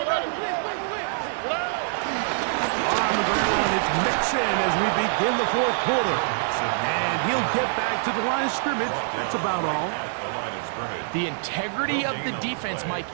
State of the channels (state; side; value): silent; left; digital silence